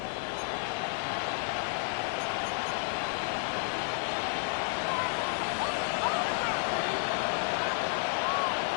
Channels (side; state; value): right; silent; 57 dB below the other